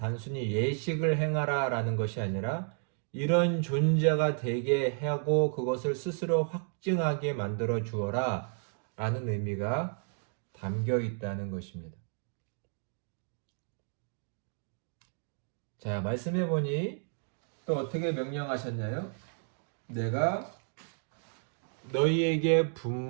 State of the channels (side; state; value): left; silent; 56 dB below the other